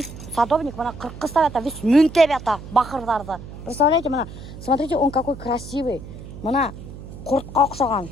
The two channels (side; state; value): right; noise; hum, 13 dB below the sound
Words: садовник мына қырқы ставят, вес мүнтеп ята бақырдарды. Представляете, мына, смотрите, он какой красивый. Мына құртқа ұқсаған